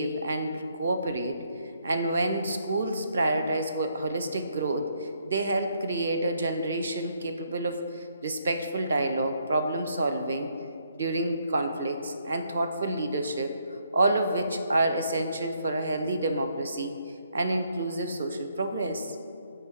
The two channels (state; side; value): inverted; both; correlation -0.72